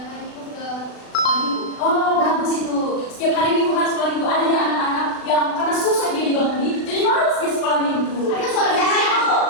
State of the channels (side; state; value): right; late; 36 ms